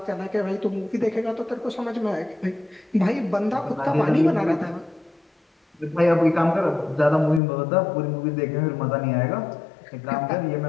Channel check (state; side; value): drops out; right; at 7.4 s